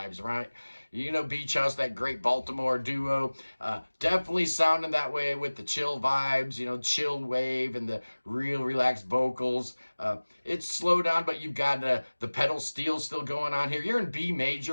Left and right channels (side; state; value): both; inverted; correlation -1.00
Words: right? You know, Beach House, that great Baltimore duo. Definitely sounding that way with the chill vibes, you know, chill wave and the real relaxed vocals. It's slow down, but you've got the pedal steel still going on here. You're in B